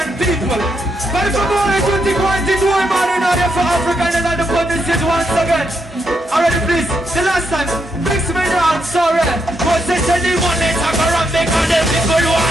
people. But if I'm only tutti quanti due mani in aria for Africa and another put this shit once again. Already please, the last time, mix me down, sorry. Cause they said they want it, I'm around because the people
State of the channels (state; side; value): normal; both; correlation 0.80